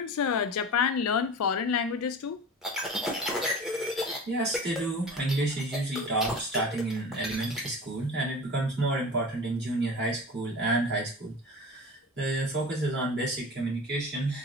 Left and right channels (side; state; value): both; normal; correlation 0.34